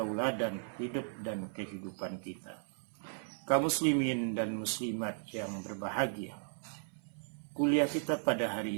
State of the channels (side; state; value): left; silent; 54 dB below the other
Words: hidup dan kehidupan kita. Kaum muslimin dan muslimat yang berbahagia, kuliah kita pada